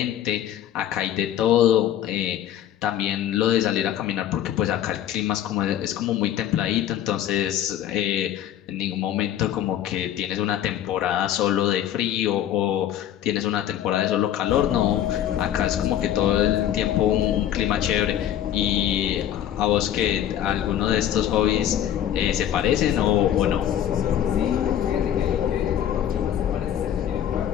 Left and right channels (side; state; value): right; quieter; 10.9 dB